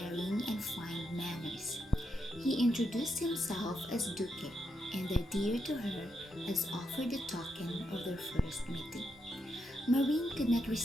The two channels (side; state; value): both; normal; correlation 0.82